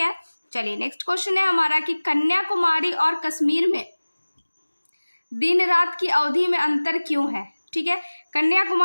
चलिए नेक्स्ट क्वेश्चन है हमारा कि कन्याकुमारी और कश्मीर में दिन रात की अवधि में अंतर क्यों है, ठीक है।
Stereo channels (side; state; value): both; inverted; correlation -1.00